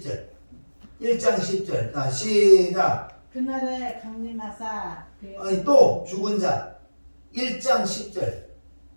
1장 10절. 자 시작. 그날에 강림하사 또 죽은 자 1장 10절.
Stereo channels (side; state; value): both; inverted; correlation -1.00